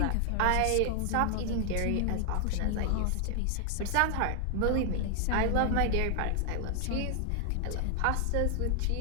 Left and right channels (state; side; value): different; both; correlation 0.00